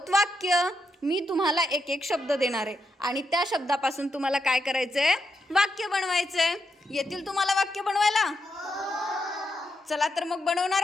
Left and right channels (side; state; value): both; normal; correlation 0.83